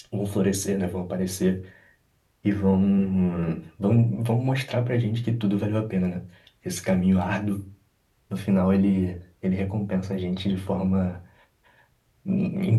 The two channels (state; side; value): identical; both; correlation 1.00